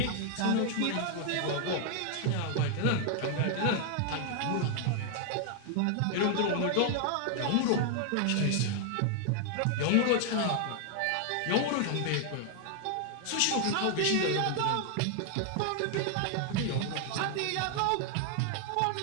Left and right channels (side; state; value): both; different; correlation 0.00